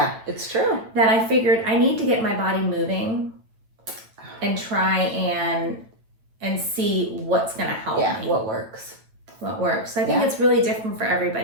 It's true. That I figured I need to get my body moving. and try and see what's going to help me. What works. I think it's really different for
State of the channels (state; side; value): late; left; 9.0 ms